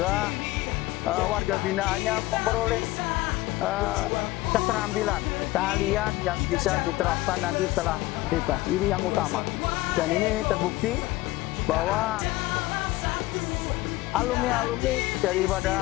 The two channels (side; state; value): right; quieter; 18.7 dB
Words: warga binaannya memperoleh keterampilan, keahlian yang bisa diterapkan nanti setelah bebas. Ini yang utama, dan ini terbukti bahwa alumni-alumni